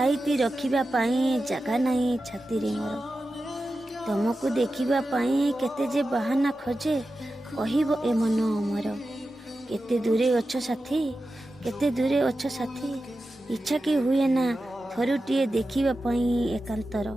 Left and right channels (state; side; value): normal; both; correlation 0.92